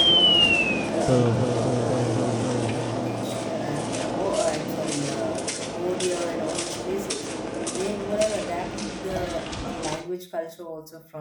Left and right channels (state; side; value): identical; both; correlation 1.00